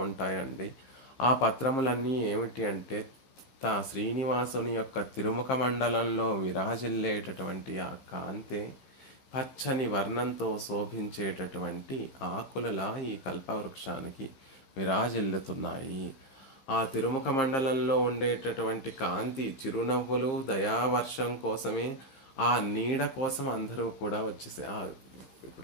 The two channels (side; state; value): right; late; 15 ms